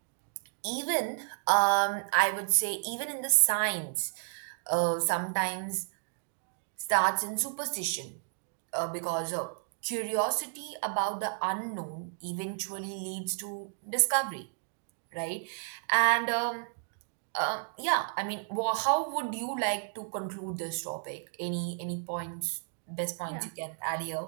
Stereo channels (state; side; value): silent; left; digital silence